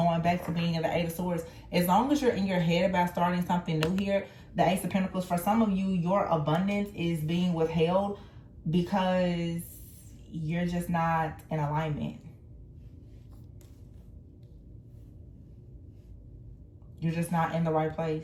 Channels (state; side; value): identical; both; correlation 1.00